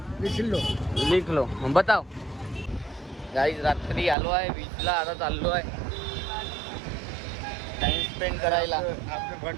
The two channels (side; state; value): left; drops out; at 4.2 s